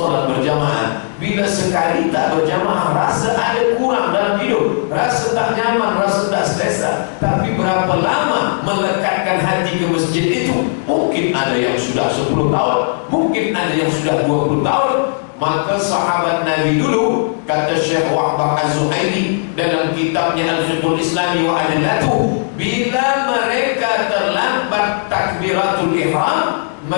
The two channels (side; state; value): right; silent; digital silence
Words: berjamaah, bila sekali tak berjamaah rasa ada kurang dalam hidup, rasa tak nyaman, rasa tak selesa. Tapi berapa lama melekatkan hati ke masjid itu? Mungkin ada yang sudah 10 tahun, mungkin ada yang sudah 20 tahun. Maka sahabat Nabi dulu, kata Syekh Wahbah Az-Zuhairi dalam kitabnya Al-Fiqhul Islami wa Adillatuh, bila mereka terlambat takbiratul ihram,